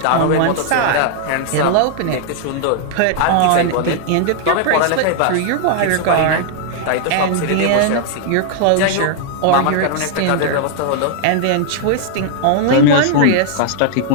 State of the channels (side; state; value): both; different; correlation -0.01